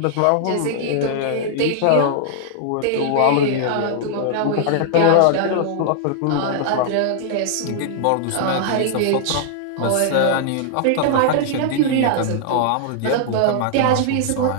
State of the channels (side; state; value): both; different; correlation -0.01